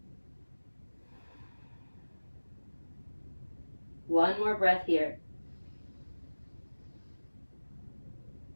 One more breath here.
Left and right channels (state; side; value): inverted; both; correlation -1.00